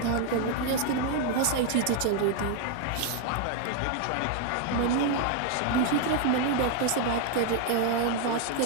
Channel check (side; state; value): both; different; correlation 0.00